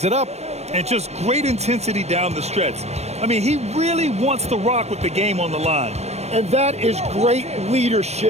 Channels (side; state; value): left; late; 0.31 ms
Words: it up. And just great intensity down the stretch. I mean, he really wants to rock with the game on the line. And that is great